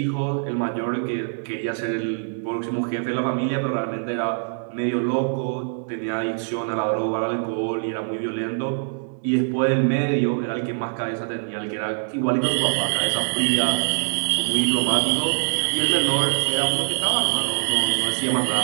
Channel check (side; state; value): left; silent; 63 dB below the other